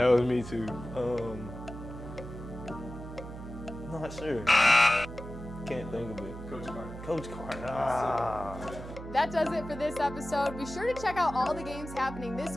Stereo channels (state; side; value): noise; right; hum, 11 dB below the sound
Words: was me too. Not sure. Can't think of it. Coach Carter. Coach Carter. Ah. That does it for this episode. Be sure to check out all the games happening this